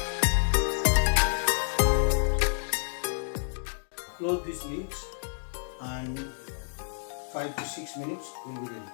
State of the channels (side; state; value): right; silent; digital silence